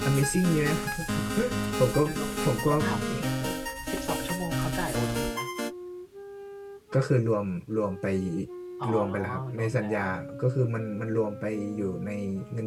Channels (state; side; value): identical; both; correlation 1.00